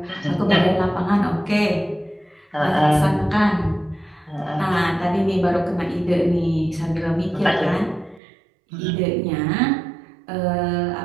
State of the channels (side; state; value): left; drops out; at 8.2 s